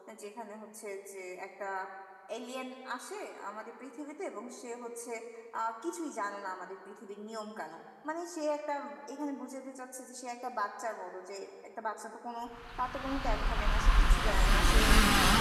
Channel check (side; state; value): both; identical; correlation 1.00